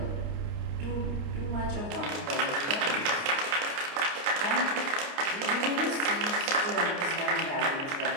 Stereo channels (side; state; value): left; late; 29 ms